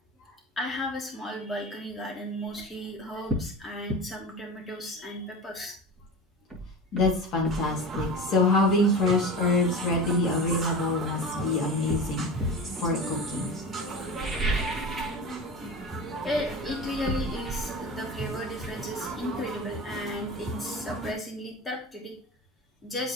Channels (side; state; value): both; normal; correlation 0.30